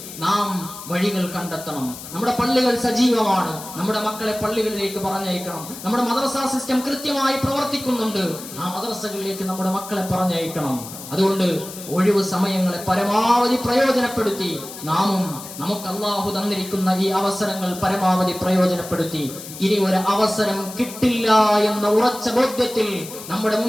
നാം വഴികൾ കണ്ടെത്തണം. നമ്മുടെ പള്ളികൾ സജീവമാണ്, നമ്മുടെ മക്കളെ പള്ളികളിലേക്ക് പറഞ്ഞയക്കണം. നമ്മുടെ മദ്രസ സിസ്റ്റം കൃത്യമായി പ്രവർത്തിക്കുന്നുണ്ട്, ആ മദ്രസകളിലേക്ക് നമ്മുടെ മക്കളെ പറഞ്ഞയക്കണം. അതുകൊണ്ട് ഒഴിവ് സമയങ്ങളെ പരമാവധി പ്രയോജനപ്പെടുത്തി നാമും നമുക്ക് അല്ലാഹു തന്നിരിക്കുന്ന ഈ അവസരങ്ങൾ പരമാവധി പ്രയോജനപ്പെടുത്തി ഇനി ഒരു അവസരം കിട്ടില്ല എന്ന ഉറച്ച ബോധ്യത്തിൽ നമ്മുടെ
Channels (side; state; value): left; noise; hiss, 13 dB below the sound